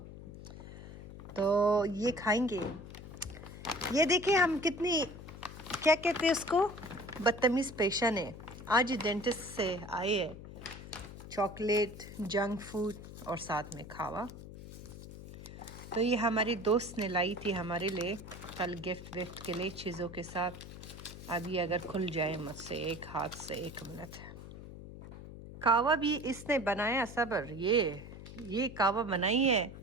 तो ये खाएंगे। ये देखिए हम कितनी, क्या कहते हैं उसको, बदतमीज़ पेशेंट है। आज डेंटिस्ट से आए हैं, चॉकलेट, जंक फूड और साथ में खावा। तो ये हमारी दोस्त ने लाई थी हमारे लिए कल गिफ्ट विफ्ट के लिए चीज़ों के साथ। अभी अगर खुल जाए मुझसे एक हाथ से, 1 मिनट। कावा भी इसने बनाया, सबर, ये ये कावा बनाई है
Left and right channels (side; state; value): left; noise; hum, 13 dB below the sound